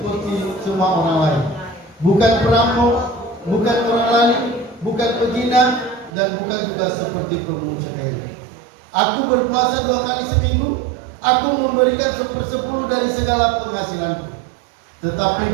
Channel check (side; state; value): left; drops out; at 6.1 s